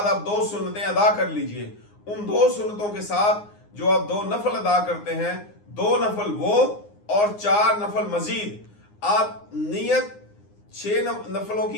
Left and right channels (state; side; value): late; right; 9.7 ms